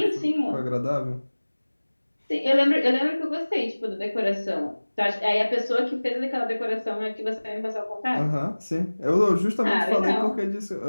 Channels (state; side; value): inverted; both; correlation -1.00